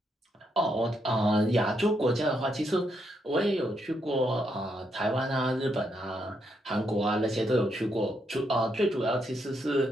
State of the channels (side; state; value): both; normal; correlation 0.78